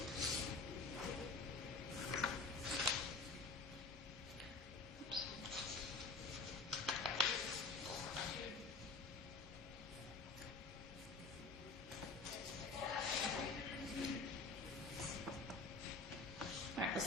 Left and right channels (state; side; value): quieter; right; 4.0 dB